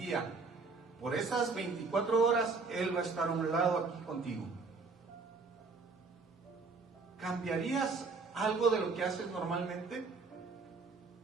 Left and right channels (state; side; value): quieter; left; 4.3 dB